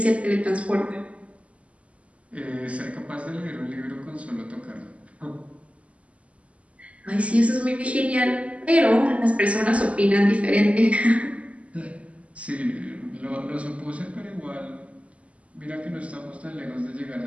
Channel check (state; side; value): late; left; 0.064 ms